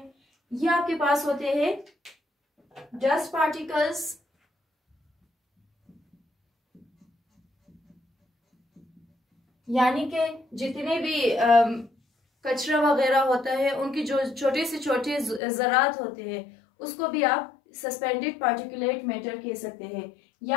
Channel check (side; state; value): right; drops out; at 15.4 s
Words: ये आपके पास होते हैं डस्ट पार्टिकल्स, यानी कि जितने भी कचरा वगैरह होता है उनकी जो छोटे से छोटे ज़रात होते हैं उसको भी आप सस्पेंडेड पार्टिकुलेट मैटर कह सकते हैं,